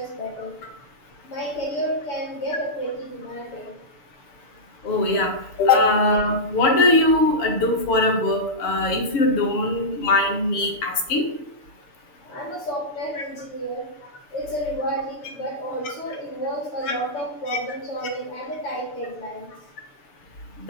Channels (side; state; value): right; late; 6.8 ms